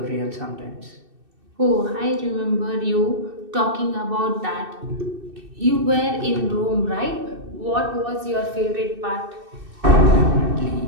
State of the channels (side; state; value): left; late; 2.6 ms